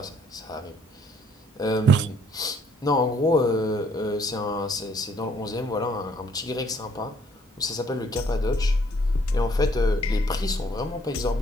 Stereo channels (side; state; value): both; normal; correlation 0.64